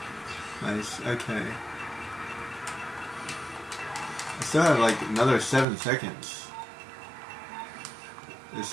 Nice, okay. I still have like another 7 seconds. There's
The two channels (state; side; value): drops out; left; at 5.7 s